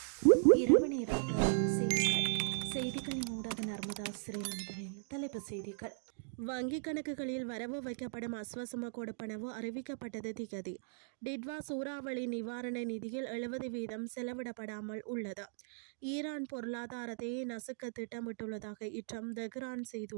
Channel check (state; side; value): silent; left; digital silence